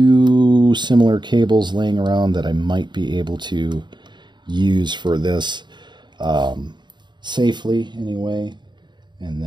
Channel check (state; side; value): late; left; 0.22 ms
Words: similar cables laying around that I might be able to use for this safely anyway, and